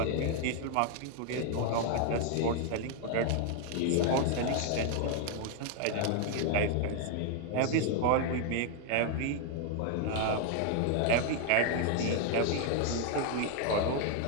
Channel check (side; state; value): both; different; correlation 0.00